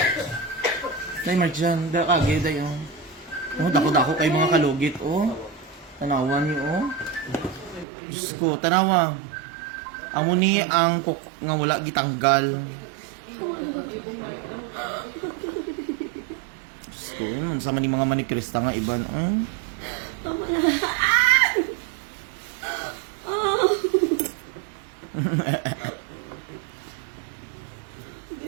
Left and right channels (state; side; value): drops out; left; at 7.9 s